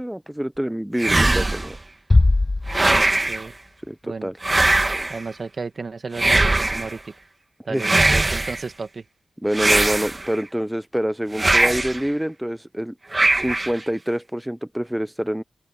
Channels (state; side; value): normal; both; correlation 0.98